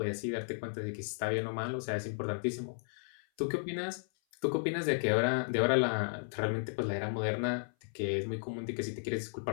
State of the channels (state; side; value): silent; right; 55 dB below the other